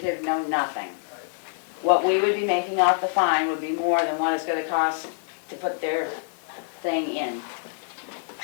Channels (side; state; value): right; silent; 59 dB below the other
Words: no nothing. What we would be making off the fine would be more than what it's gonna cost to put their thing in.